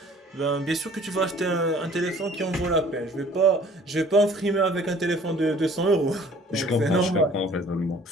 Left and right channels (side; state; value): both; normal; correlation 0.52